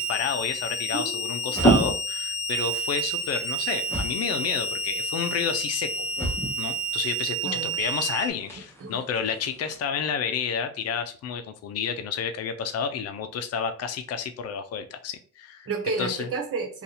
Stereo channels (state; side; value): normal; both; correlation 0.15